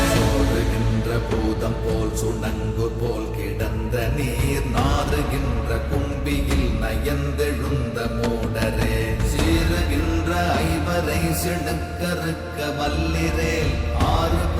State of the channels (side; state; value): both; identical; correlation 1.00